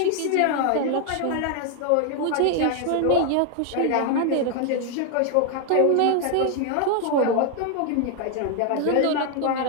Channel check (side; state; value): both; different; correlation 0.00